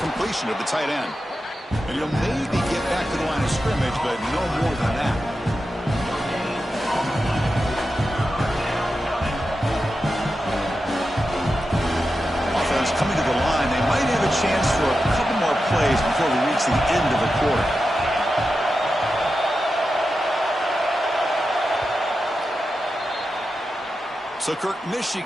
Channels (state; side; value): normal; both; correlation 0.90